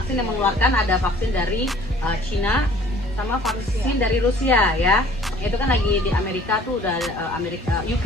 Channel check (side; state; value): both; normal; correlation 0.53